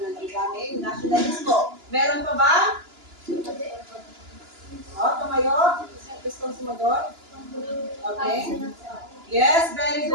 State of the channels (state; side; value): late; left; 2.9 ms